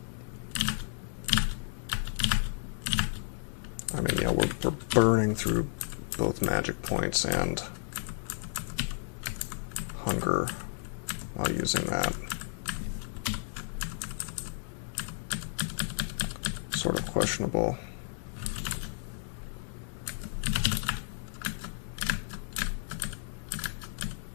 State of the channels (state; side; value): silent; right; digital silence